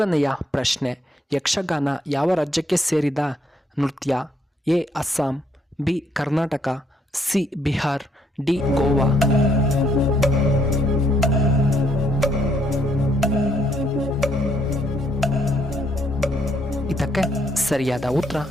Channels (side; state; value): both; normal; correlation 0.71